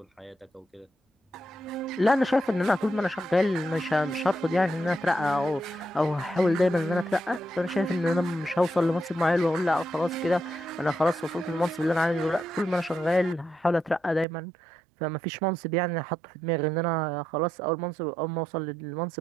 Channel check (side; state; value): left; drops out; at 14.2 s